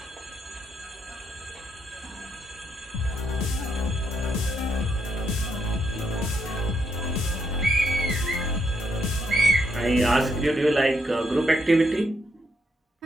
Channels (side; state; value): both; normal; correlation 0.77